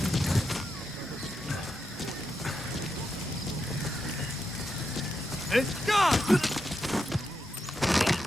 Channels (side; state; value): both; normal; correlation 0.85